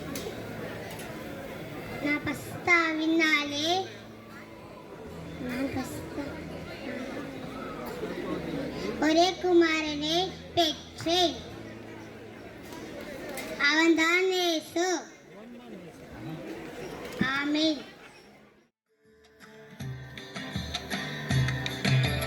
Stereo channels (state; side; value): identical; both; correlation 1.00